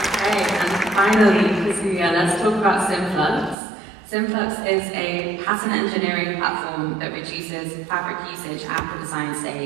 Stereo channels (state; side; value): drops out; left; at 3.6 s